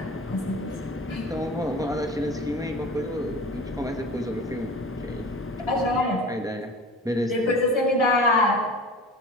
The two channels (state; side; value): normal; both; correlation 0.36